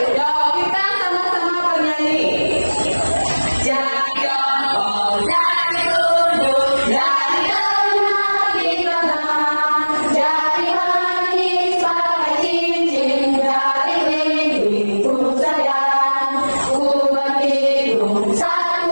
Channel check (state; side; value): inverted; both; correlation -1.00